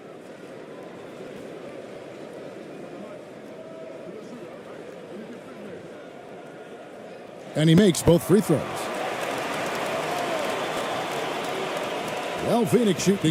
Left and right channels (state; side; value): identical; both; correlation 1.00